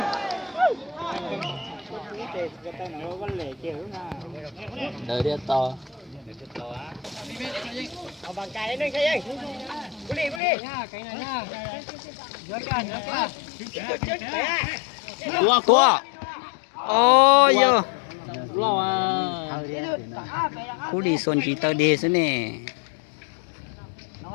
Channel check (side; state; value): right; drops out; at 10.4 s